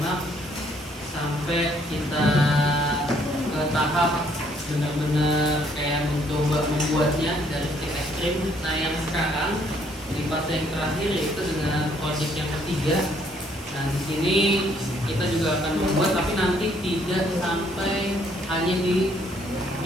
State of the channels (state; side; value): normal; both; correlation 0.66